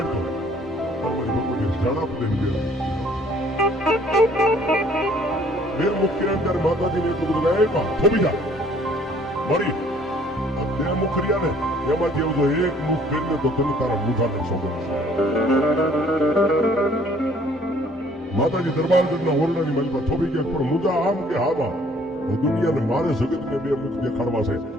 फिर मुखिया अंदर माता जी ने कुछ लगाया थोपी जा मरी ते मुखरिया ने एमा जेव जो एक मुख फेरने तो तुम तारा मुठा ने सोगन माता जी दरबार जन्ना ओरडा ની મલમાં થોપી કે પર મુજા આમ કે હાબા દુનિયાને મારે જગત ને બે મુખ દેખાડવા છે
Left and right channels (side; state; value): both; normal; correlation 0.58